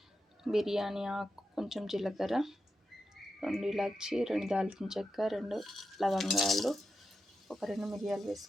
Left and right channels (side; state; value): both; normal; correlation 0.89